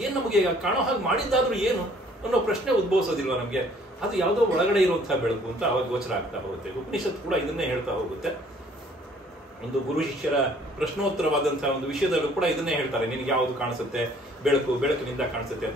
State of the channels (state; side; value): normal; both; correlation 0.58